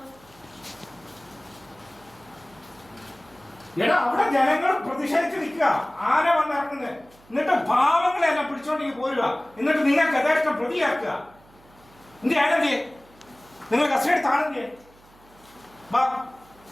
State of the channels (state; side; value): noise; right; hum, 28 dB below the sound